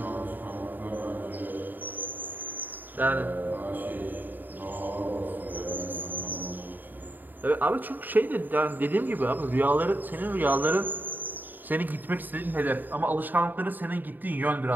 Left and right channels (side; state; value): left; late; 0.089 ms